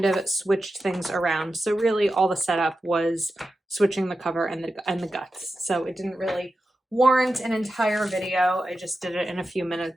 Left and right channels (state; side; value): normal; both; correlation 0.91